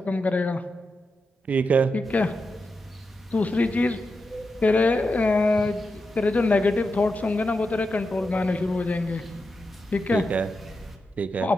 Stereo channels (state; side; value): normal; both; correlation 0.88